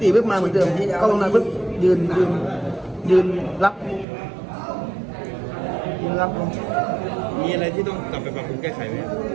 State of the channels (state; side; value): drops out; left; at 4.0 s